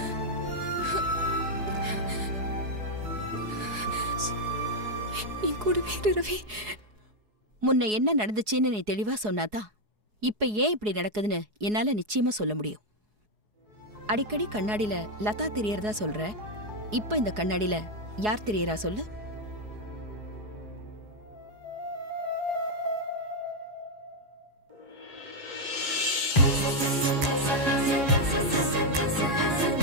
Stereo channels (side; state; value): left; late; 4.8 ms